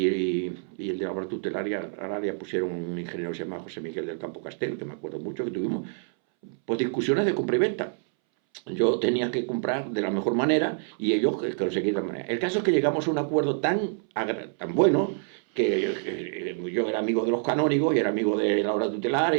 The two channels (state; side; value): silent; left; 60 dB below the other